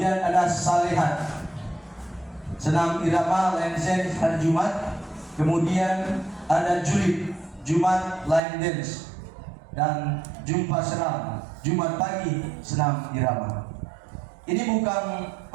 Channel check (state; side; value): drops out; left; at 8.4 s